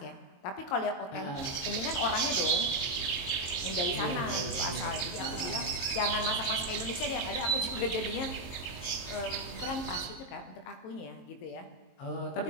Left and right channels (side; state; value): right; late; 22 ms